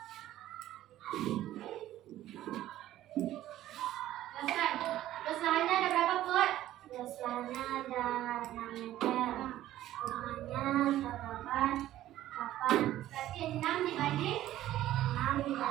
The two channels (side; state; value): left; quieter; 13.8 dB